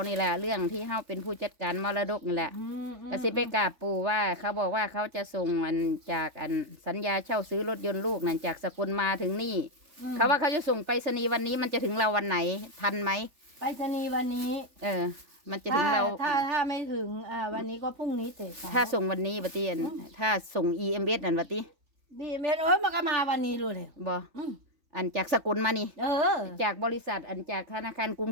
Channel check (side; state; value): left; late; 3.4 ms